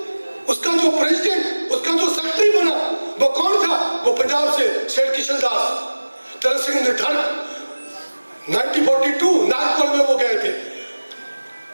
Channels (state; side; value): inverted; both; correlation -1.00